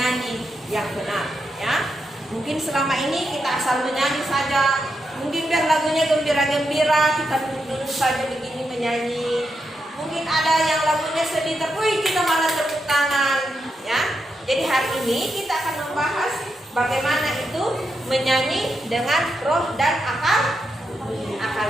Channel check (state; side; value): normal; both; correlation 0.84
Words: yang benar ya. Mungkin selama ini kita asal menyanyi saja, mungkin biar lagunya gembira-gembira kita duduk saja begini menyanyi. Mungkin ada yang lagunya sedih, tapi kita malah tepuk tangan ya. Jadi hari ini kita akan membahas bagaimana itu menyanyi dengan roh dan